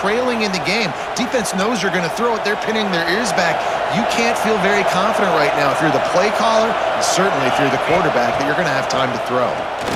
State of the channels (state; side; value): identical; both; correlation 1.00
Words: in the game. Defense knows you're going to throw it. They're pinning their ears back. You can't feel very confident right now if you're the play caller, and certainly if you're the quarterback, that you're going to have time to throw.